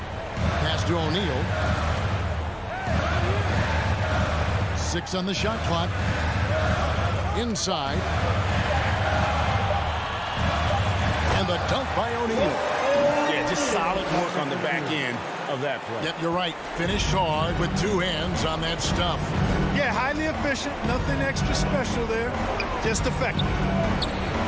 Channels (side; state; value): both; identical; correlation 1.00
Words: Pass to O'Neal. 6 on the shot clock. Inside. And the dunk by O'Neal. Yeah, just solid work on the back end of that play. Yep, you're right. Finished hard with 2 hands on that stuff. Yeah, highly efficient. Nothing extra special there. Just effective.